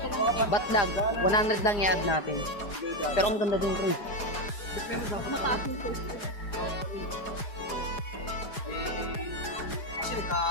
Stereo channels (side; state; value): right; late; 4.9 ms